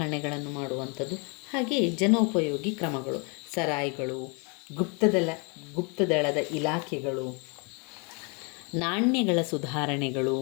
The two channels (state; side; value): quieter; right; 33.7 dB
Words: ಮಾಡುವಂಥದ್ದು, ಹಾಗೆಯೇ ಜನೋಪಯೋಗಿ ಕ್ರಮಗಳು, ಸರಾಯ್ಗಳು, ಗುಪ್ತದಳದ ಇಲಾಖೆಗಳು, ನಾಣ್ಯಗಳ ಸುಧಾರಣೆಗಳು,